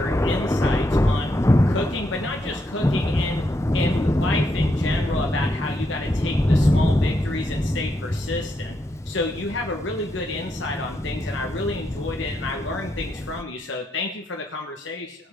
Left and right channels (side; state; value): both; normal; correlation 0.80